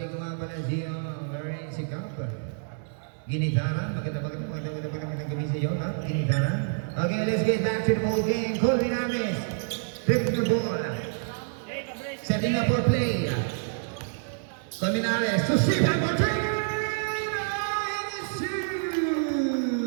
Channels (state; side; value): silent; left; digital silence